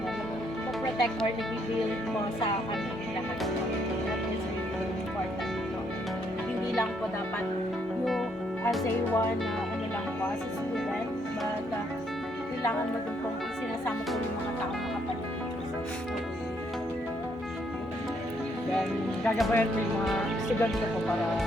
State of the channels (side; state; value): both; normal; correlation 0.71